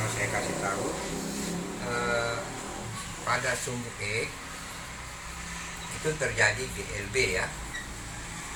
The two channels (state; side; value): identical; both; correlation 1.00